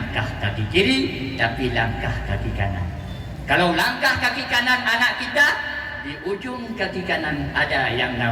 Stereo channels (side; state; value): both; identical; correlation 1.00